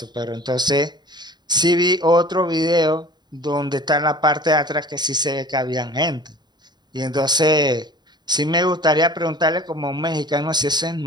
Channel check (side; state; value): left; late; 0.21 ms